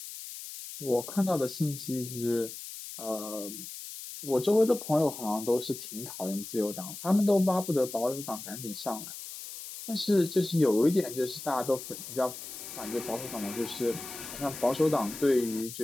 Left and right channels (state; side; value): noise; left; hiss, 11 dB below the sound